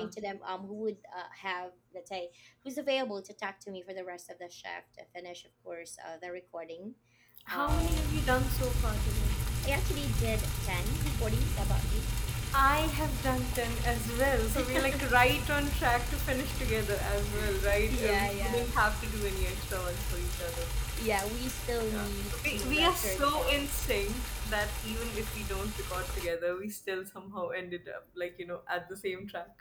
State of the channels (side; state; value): both; identical; correlation 1.00